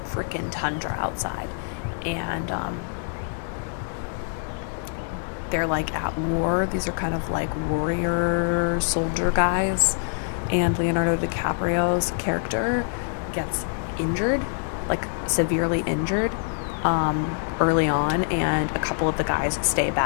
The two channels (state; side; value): silent; right; digital silence